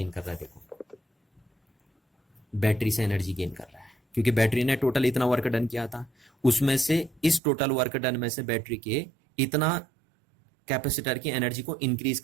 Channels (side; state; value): left; drops out; at 7.4 s